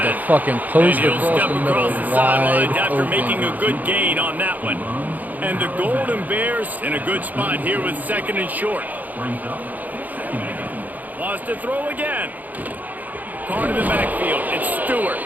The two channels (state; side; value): late; left; 0.081 ms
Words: to fucking post across the middle, wide after open. making a good gain on that one. And the Golden Bears in a good spot here with second and short. Wants to throw again. Caught in the backfield. It's Stewart.